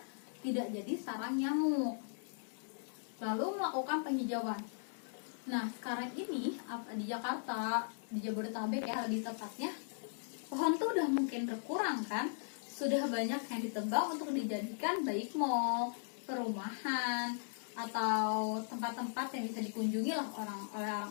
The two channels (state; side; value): silent; right; digital silence